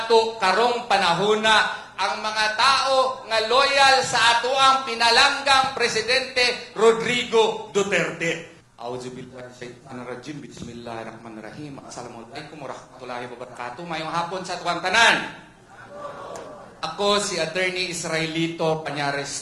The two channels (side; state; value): both; identical; correlation 1.00